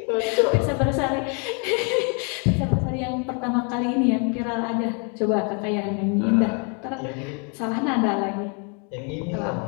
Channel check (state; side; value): quieter; right; 37.1 dB